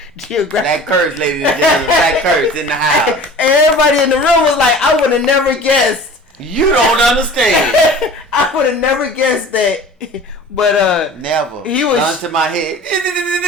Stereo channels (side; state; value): both; normal; correlation 0.42